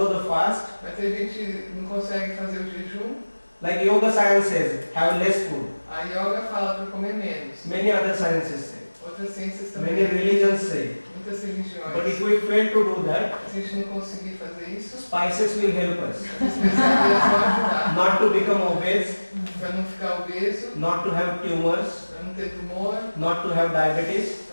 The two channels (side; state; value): both; inverted; correlation -1.00